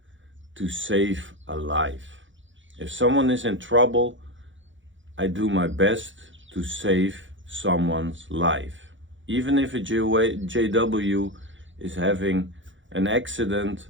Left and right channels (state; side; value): late; left; 0.55 ms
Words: to save a life. If someone is in trouble, I do my best to save someone's life. Even if a JW is having an accident,